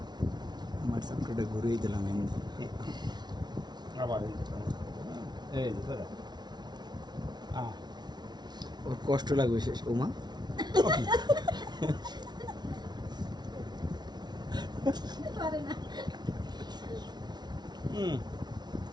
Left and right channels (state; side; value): late; left; 0.20 ms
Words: আমার সাপটা ঘুরিয়ে দিলাম এমনি আবার এই ওর কষ্ট লাগবে শেষ ওমা